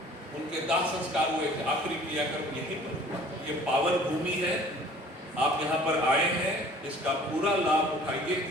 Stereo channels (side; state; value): both; normal; correlation 0.50